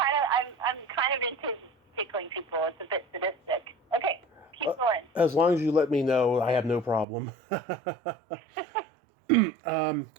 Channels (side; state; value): left; drops out; at 7.1 s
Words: of into tickling people. It's a bit sadistic. Okay, keep going. As long as you let me know, I have no problem. Hold on